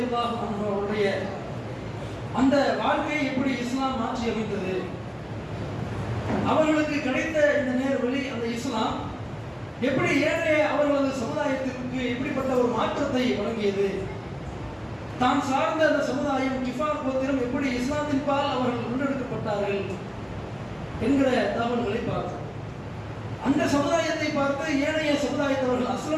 அன்ஹு அவருடைய அந்த வாழ்க்கையை எப்படி இஸ்லாம் மாற்றி அமைத்தது, அவர்களுக்கு கிடைத்த இந்த நேர்வழி, அந்த இஸ்லாம் எப்படி ஏனைய அவர்களது சமுதாயத்திற்கு எப்படிப்பட்ட ஒரு மாற்றத்தை வழங்கியது, தான் சார்ந்த அந்த சமுதாயம் கிஃபார் கோத்திரம் எப்படி இஸ்லாத்தின் பால் அவர்கள் முன்னெடுக்கப்பட்டார்கள் என்கிற தகவல்களை பார்த்தோம். அந்த சமுதாயத்தை பார்த்து ஏனைய சமுதாயத்தவர்கள்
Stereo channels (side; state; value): both; identical; correlation 1.00